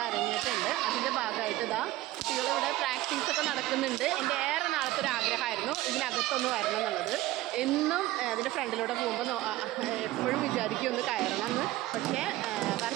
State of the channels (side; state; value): left; quieter; 16.6 dB